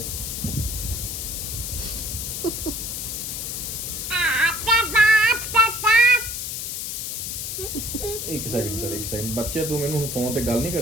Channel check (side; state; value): left; noise; hiss, 4 dB below the sound